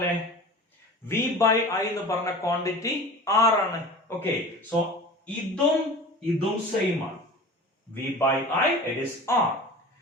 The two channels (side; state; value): both; normal; correlation 0.37